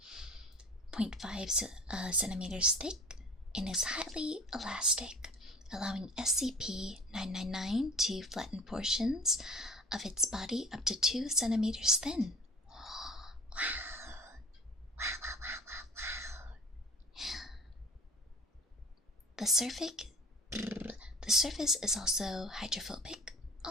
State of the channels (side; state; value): both; normal; correlation 0.43